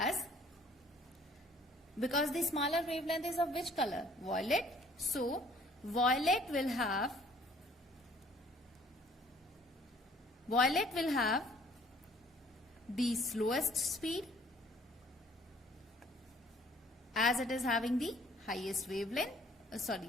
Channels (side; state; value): both; normal; correlation 0.57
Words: because the smaller wavelength is of which color? Violet. So violet will have the slowest speed, as it is having the highest wavelength,